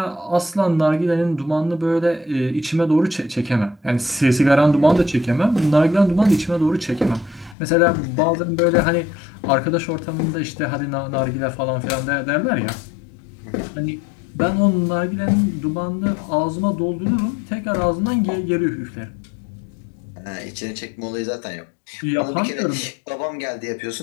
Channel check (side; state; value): right; drops out; at 7.6 s